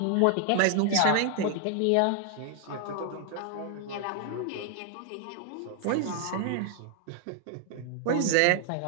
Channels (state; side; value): different; both; correlation 0.00